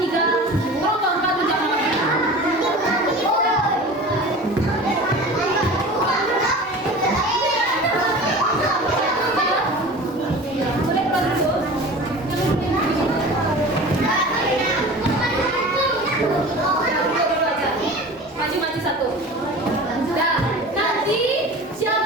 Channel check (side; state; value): both; normal; correlation 0.37